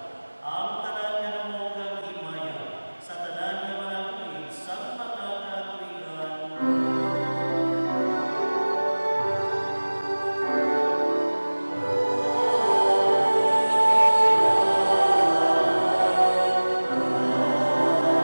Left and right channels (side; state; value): both; inverted; correlation -1.00